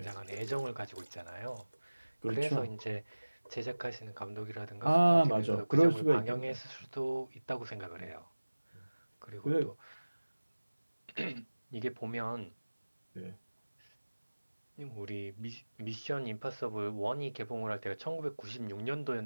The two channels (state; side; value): inverted; both; correlation -1.00